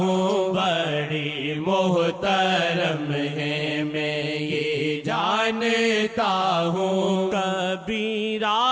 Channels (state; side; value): identical; both; correlation 1.00